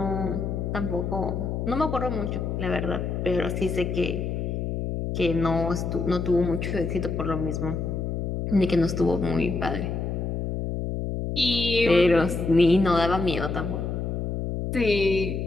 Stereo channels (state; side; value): noise; left; hum, 2 dB below the sound